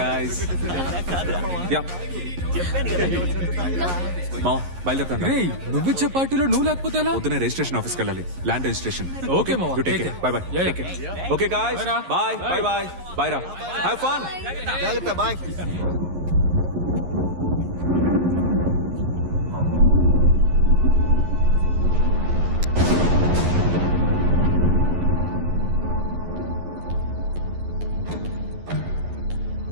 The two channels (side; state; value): left; late; 11 ms